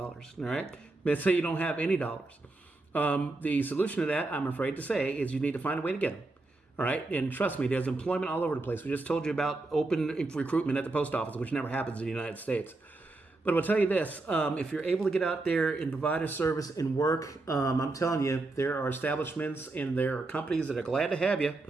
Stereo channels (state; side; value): quieter; left; 3.2 dB